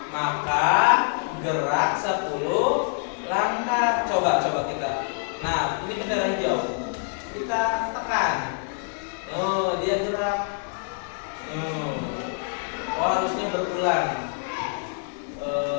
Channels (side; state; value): right; silent; 57 dB below the other